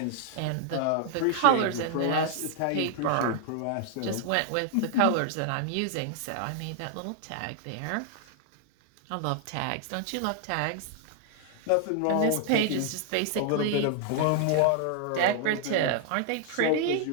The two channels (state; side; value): different; both; correlation -0.01